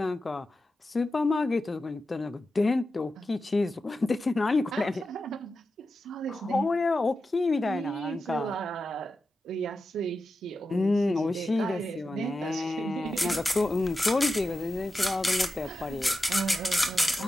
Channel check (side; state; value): both; normal; correlation 0.91